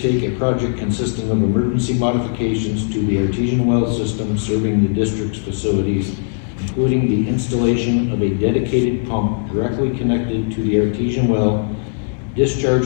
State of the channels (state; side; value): silent; right; 67 dB below the other